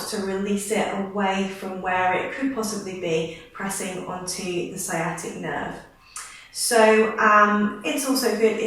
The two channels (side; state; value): both; identical; correlation 1.00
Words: to release it away from where it could possibly be pressing onto the sciatic nerve. So it's also good